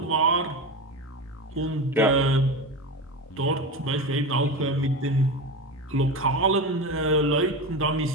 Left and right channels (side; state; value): both; normal; correlation 0.22